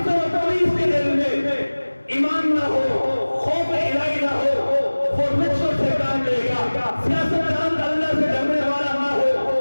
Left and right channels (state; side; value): inverted; both; correlation -1.00